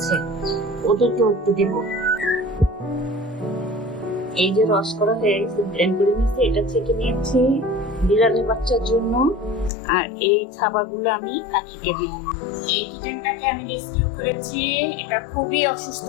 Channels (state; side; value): drops out; right; at 9.7 s